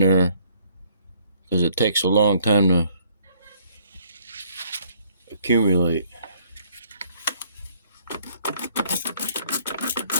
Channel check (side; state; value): both; inverted; correlation -0.62